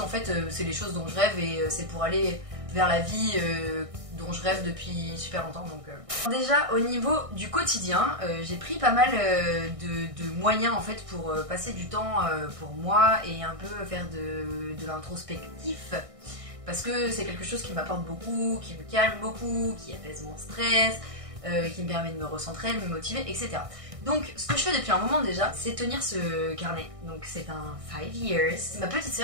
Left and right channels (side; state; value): left; late; 1.6 ms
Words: fait c'est les choses dont je rêve et c'est pour aller vers la vie dont je rêve depuis super longtemps. Donc, Déjà au niveau du quotidien, j'ai pris pas mal de moyens en fait pour passer du temps pour moi et un peu faire de l'introspectif. Parce que c'est quelque chose qui m'apporte beaucoup, qui me calme beaucoup, qui apaise mon stress, qui me permet de me recentrer, de me motiver, etc. Donc ce que je fais depuis un moment déjà, c'est tenir ce carnet. Donc c'est un 5 years. C'est ma petite